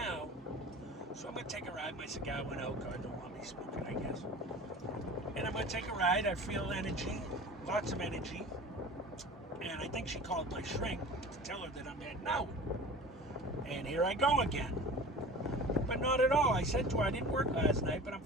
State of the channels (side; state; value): both; normal; correlation 0.38